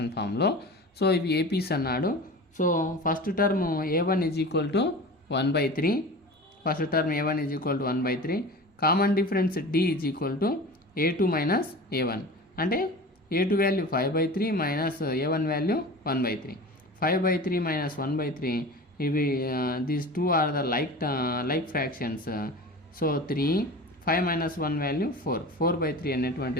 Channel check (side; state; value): both; normal; correlation 0.34